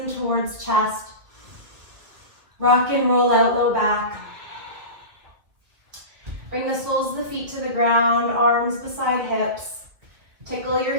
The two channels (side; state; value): left; late; 2.2 ms